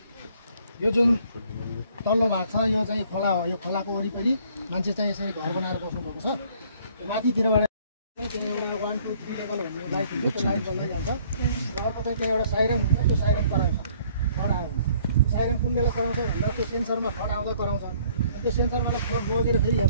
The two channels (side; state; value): both; inverted; correlation -0.60